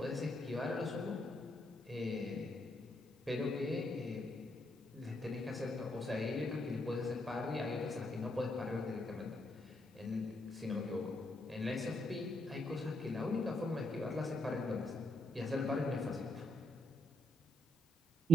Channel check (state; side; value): normal; both; correlation 0.76